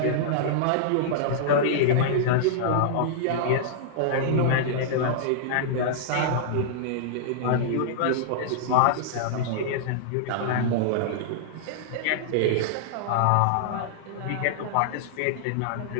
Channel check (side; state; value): both; different; correlation -0.02